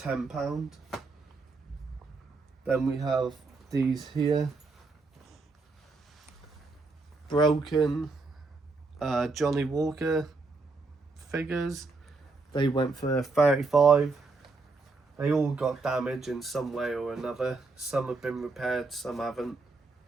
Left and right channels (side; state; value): left; quieter; 3.8 dB